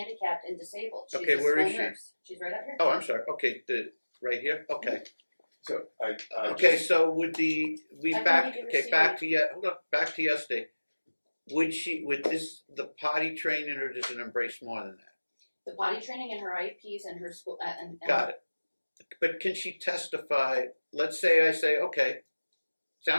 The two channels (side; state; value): both; inverted; correlation -1.00